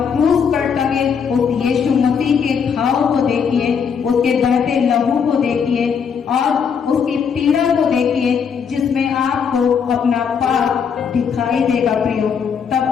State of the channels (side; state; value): right; quieter; 6.7 dB